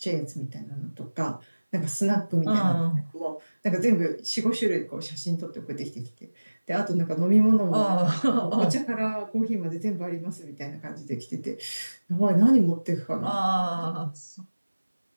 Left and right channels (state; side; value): inverted; both; correlation -1.00